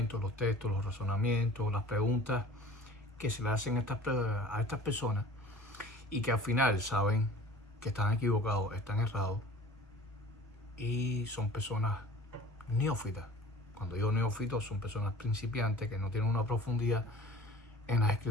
los textos, los razonamientos, las preguntas que se le hacen a estas personas y que al final saben que están equivocados, están errados y son personas neófitas. Cuando digo neófitos, son personas principiantes que no tienen una profundidad en las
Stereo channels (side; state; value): both; normal; correlation 0.45